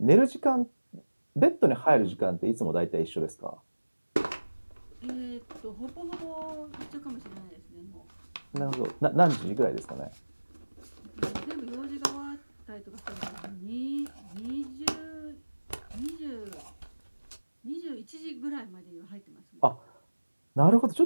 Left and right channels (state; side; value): inverted; both; correlation -1.00